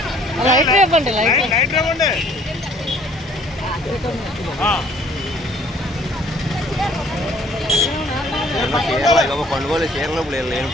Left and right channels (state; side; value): normal; both; correlation 0.58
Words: లైట్ ఇవ్వండి లైట్ ఇవ్వండి పండుగలు చీరలు